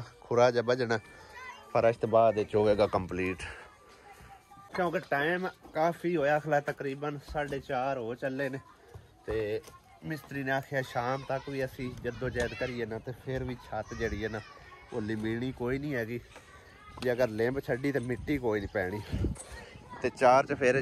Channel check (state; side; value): identical; both; correlation 1.00